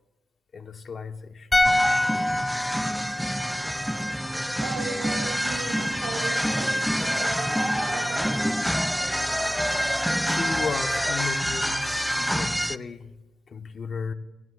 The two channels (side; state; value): both; normal; correlation 0.97